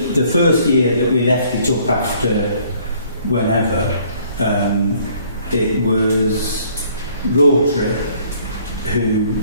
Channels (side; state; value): both; inverted; correlation -0.60